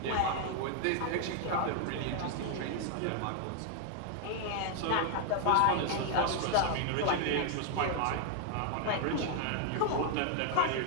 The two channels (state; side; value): different; both; correlation 0.00